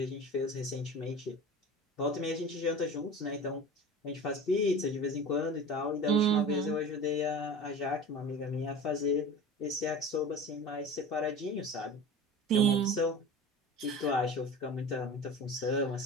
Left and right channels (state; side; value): normal; both; correlation 0.35